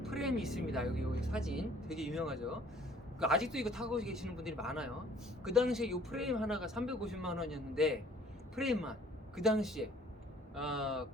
프레임이 있습니다. 여기 사진 되게 유명하죠. 그 아직도 이거 타고 계시는 분들이 많아요. 그 당시에 이 프레임 하나가 350만 원이었는데 프레임만 그 당시에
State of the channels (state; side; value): normal; both; correlation 0.56